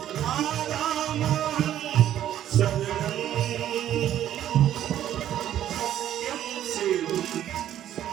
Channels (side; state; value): left; quieter; 11.5 dB